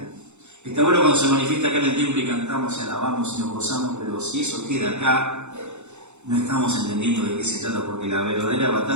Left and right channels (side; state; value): left; late; 0.83 ms